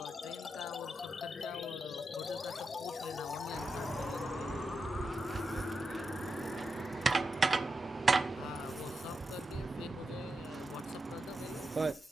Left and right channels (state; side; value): normal; both; correlation 0.87